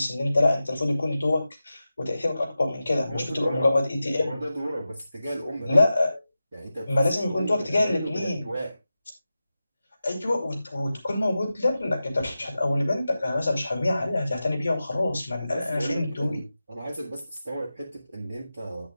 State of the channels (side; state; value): both; inverted; correlation -0.93